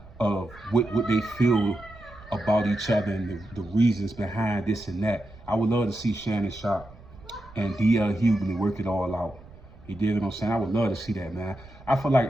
of what they feel about each other and the reasons behind this and that. I would love to see Shannon Sharpe and DL Hughley work it all out. You dig what I'm saying? I would love to see that, man. I feel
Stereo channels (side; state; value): right; noise; rumble, 21 dB below the sound